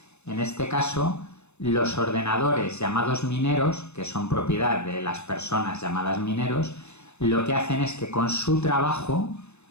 en este caso los ordenadores llamados mineros, que son propiedad de las personas llamadas mineros, lo que hacen es que con su trabajo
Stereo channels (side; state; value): right; late; 0.81 ms